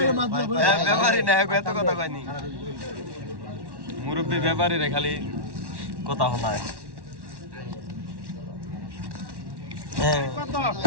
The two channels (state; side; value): late; left; 1.1 ms